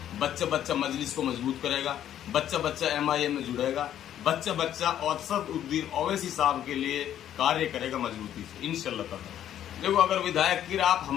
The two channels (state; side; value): quieter; right; 10.9 dB